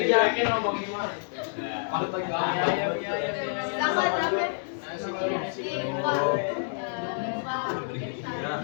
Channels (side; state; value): right; silent; digital silence